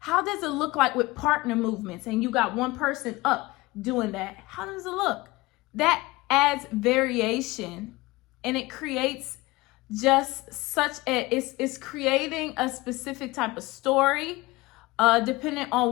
does it look like with partner movements and you got one person up doing that? How does it look? That adds variation, and it creates just it's creating a specific type of story, depending on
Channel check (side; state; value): right; quieter; 21.1 dB